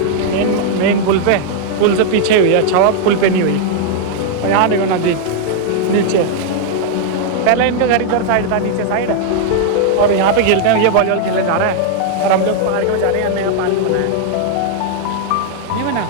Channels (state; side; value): different; both; correlation 0.00